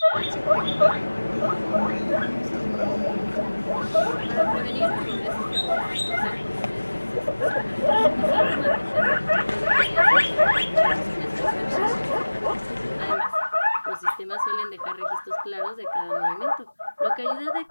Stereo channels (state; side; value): inverted; both; correlation -1.00